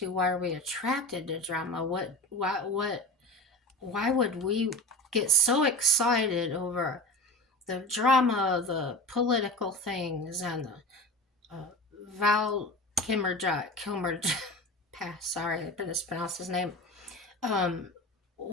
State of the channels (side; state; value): both; normal; correlation 0.31